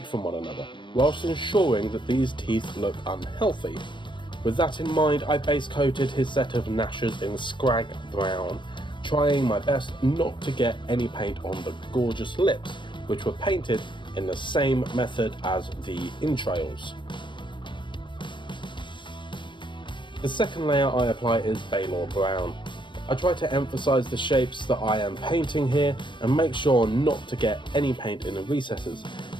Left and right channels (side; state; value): right; late; 0.23 ms